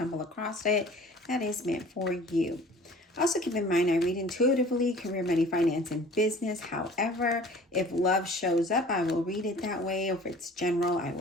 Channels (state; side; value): normal; both; correlation 0.47